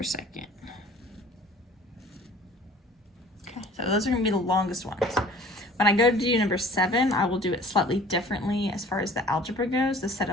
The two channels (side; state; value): both; normal; correlation 0.49